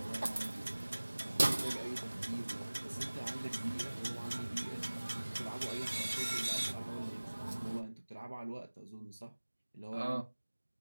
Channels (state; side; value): inverted; both; correlation -1.00